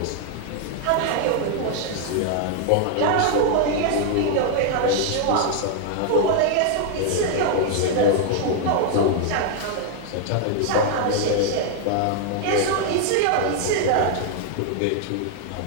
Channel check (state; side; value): different; both; correlation 0.00